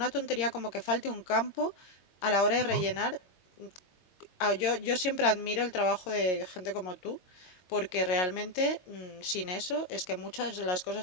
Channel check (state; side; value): late; right; 22 ms